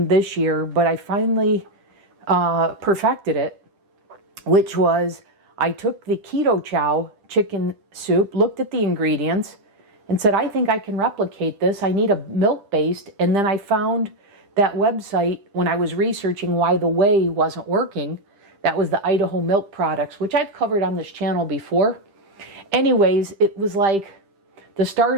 this year, but I finally perfected it, which was I took the Keto Chow chicken soup, looked at the ingredients, and said, I think I can replicate this. I need a milk-based, and then I found that website when I was researching why the whey wasn't working. That was the Idaho Milk Products, which I've covered on this channel before. Anyways, it was like the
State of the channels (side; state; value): left; late; 10 ms